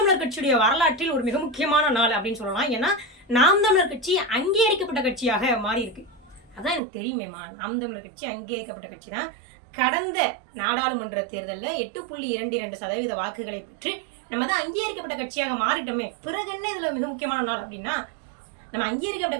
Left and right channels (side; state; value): left; drops out; at 6.8 s